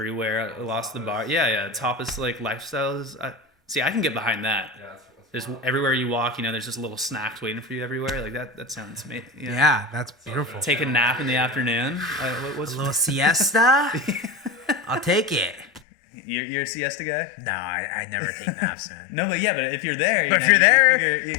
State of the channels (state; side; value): drops out; right; at 15.8 s